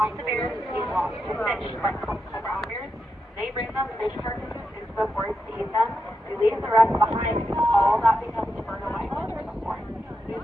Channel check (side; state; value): both; normal; correlation 0.86